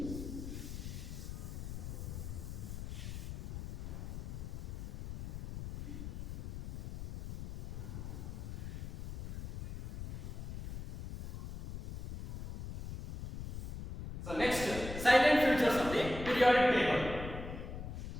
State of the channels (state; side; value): noise; left; rumble, 7 dB below the sound